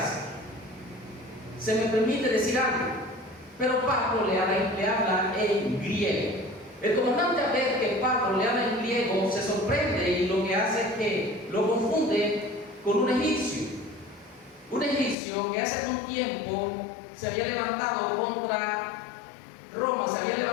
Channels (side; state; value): right; drops out; at 15.2 s